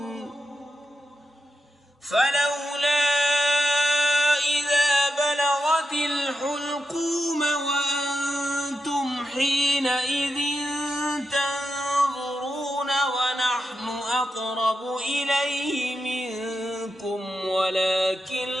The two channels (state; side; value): normal; both; correlation 0.88